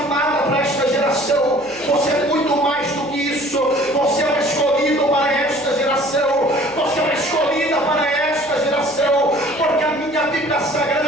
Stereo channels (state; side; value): noise; right; hum, 25 dB below the sound